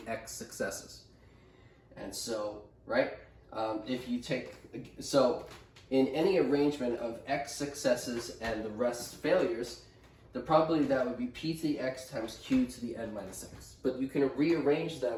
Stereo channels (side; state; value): both; identical; correlation 1.00